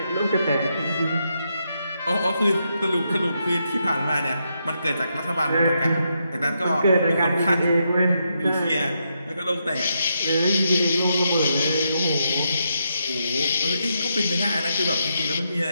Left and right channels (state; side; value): inverted; both; correlation -0.81